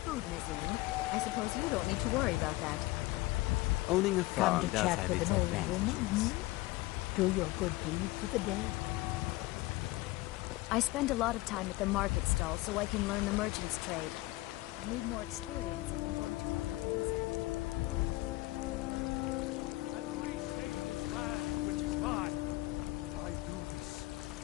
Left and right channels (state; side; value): quieter; right; 19.7 dB